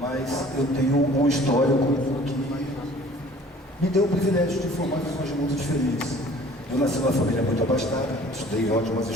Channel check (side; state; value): both; normal; correlation 0.50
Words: Mas eu tenho um histórico que me deu o privilégio de formar visões de mundo diferentes. Eu nasci numa família muito abastada, estudei em ótimas